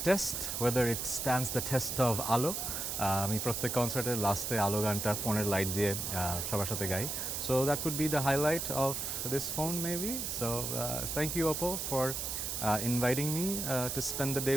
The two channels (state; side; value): noise; right; hiss, 3 dB below the sound